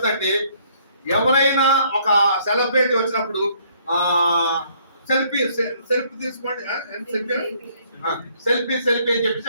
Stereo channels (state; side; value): inverted; both; correlation -0.64